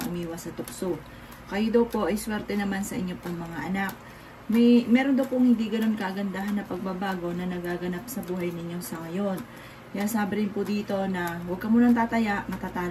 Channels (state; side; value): identical; both; correlation 1.00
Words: umiwas sa tukso. Kayo daw po ay swerte naman sa inyong pong mga anak. Meron daw pong hindi ganun kagandahan na pagbabago na nagaganap sa buhay ninyo sa ngayon. Kaya sabi rin po dito na huwag ka munang tataya,